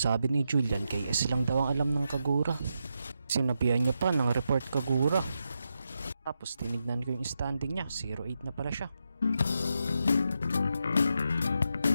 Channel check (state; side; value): inverted; both; correlation -0.85